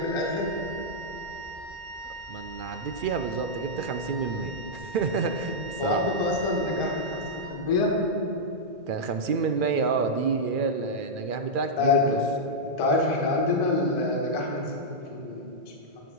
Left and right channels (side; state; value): left; late; 2.4 ms